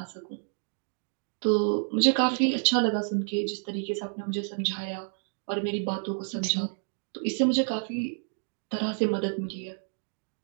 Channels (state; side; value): silent; left; digital silence